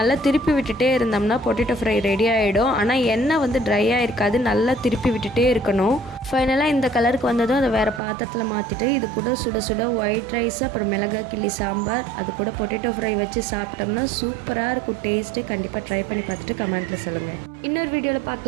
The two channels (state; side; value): drops out; left; at 8.0 s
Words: திருப்பி விட்டுட்டே இருந்தோம்னா பொட்டேட்டோ ஃப்ரை ரெடி ஆகிடும். ஆனால் எண்ணெய் ட்ரையாக இருக்காது, நல்லா திருப்பி விட்டுட்டே இருக்கணும். ஃபைனலாக இந்த கலருக்கு வந்ததும் அதை வேறு பாத்திரத்தில் மாற்றிட்டு இது கூட சுட சுட ஒயிட் ரைஸ், அப்புறம் மிளகாய் கிள்ளி சாம்பார், அது கூட பொட்டேட்டோ ஃப்ரை வச்சு சாப்பிட்டோம்னா சூப்பராக இருக்கும் டேஸ்ட்டு. கண்டிப்பாக ட்ரை பண்ணி பார்த்துட்டு கமெண்ட்டில் சொல்லுங்கள். இன்னொரு வீடியோவில்